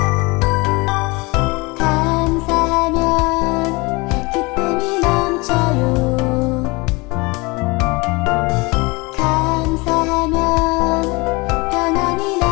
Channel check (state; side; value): quieter; right; 25.7 dB